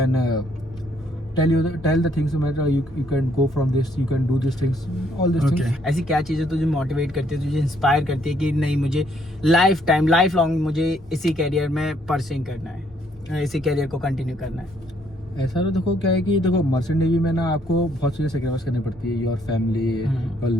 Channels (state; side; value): normal; both; correlation 0.68